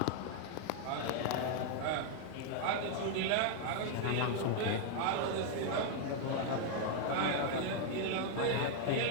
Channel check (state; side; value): different; both; correlation 0.00